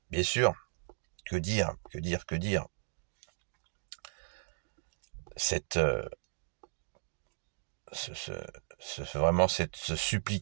Bien sûr, que dire. Vraiment cette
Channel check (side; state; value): left; silent; digital silence